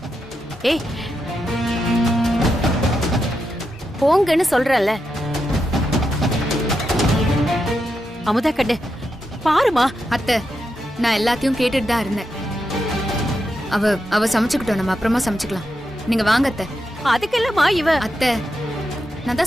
ஏய் போங்கன்னு சொல்றல. அமுதா கண்ணு பாருமா. அத்தை, நான் எல்லாத்தையும் கேட்டுட்டு தான் இருந்தேன். அவ சமைச்சுக்கிட்டோம், நம்ம அப்புறமா சமைச்சுக்கலாம். நீங்க வாங்க அத்தை. அதுக்கெல்லாமா இவ? அத்தை, நான்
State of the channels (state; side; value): normal; both; correlation 0.86